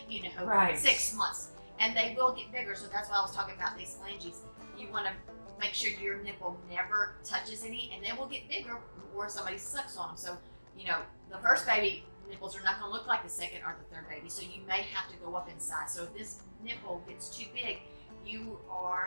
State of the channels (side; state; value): both; inverted; correlation -1.00